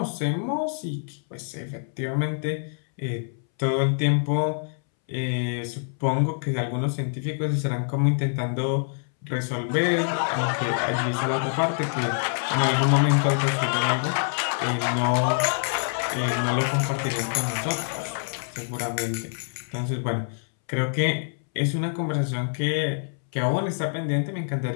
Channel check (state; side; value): silent; right; 61 dB below the other